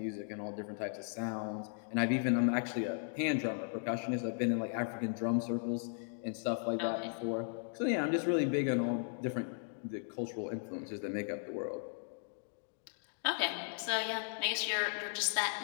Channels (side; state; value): right; silent; digital silence